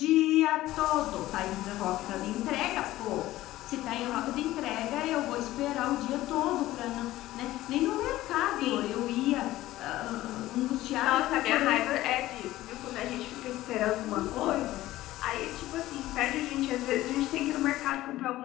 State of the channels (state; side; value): quieter; right; 15.9 dB